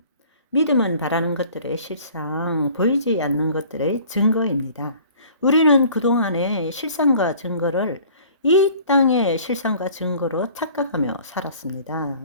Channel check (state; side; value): inverted; both; correlation -0.50